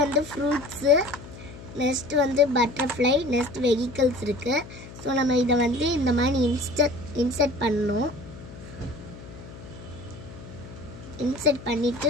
fruits, next வந்து butterfly, next vehicles இருக்கு. So நம்ம இத வந்து இந்த மாதிரி insert பண்ணனும். insert பண்ணிட்டு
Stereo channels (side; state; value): left; noise; hum, 16 dB below the sound